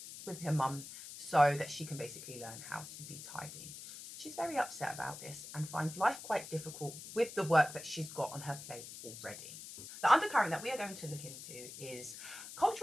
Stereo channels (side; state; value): left; noise; hiss, 12 dB below the sound